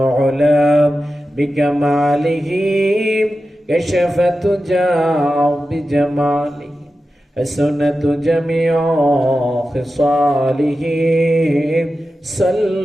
بكماله كشف الدجى بجماله حسنت جميع خصاله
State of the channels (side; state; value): both; normal; correlation 0.92